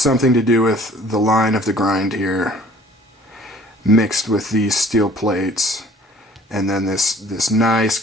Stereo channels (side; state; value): both; normal; correlation 0.52